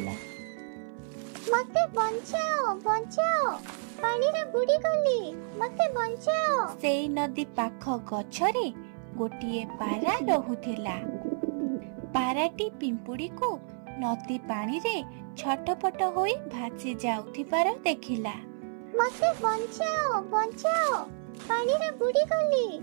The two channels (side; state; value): left; silent; 56 dB below the other